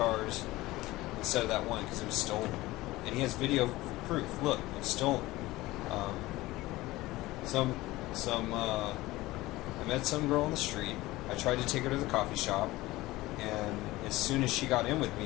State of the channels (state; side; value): quieter; right; 18.7 dB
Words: instead of that one because it was stolen. And he has video proof. Look, it's stolen. I met some girl on the street. I tried to take her to the coffee shop, and as soon as she got in with